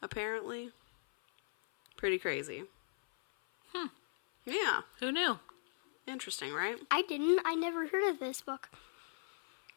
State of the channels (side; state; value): right; silent; 53 dB below the other